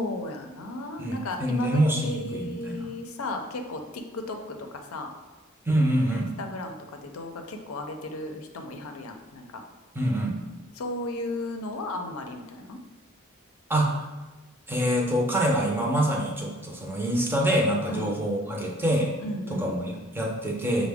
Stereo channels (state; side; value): normal; both; correlation 0.60